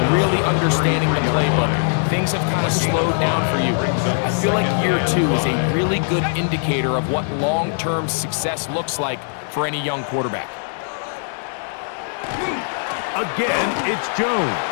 really understanding the playbook. Things have kind of slowed down for you. I feel like year 2 is a really good indicator of what long-term success looks like for any young quarterback. Again, it's Jones.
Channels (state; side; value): silent; right; digital silence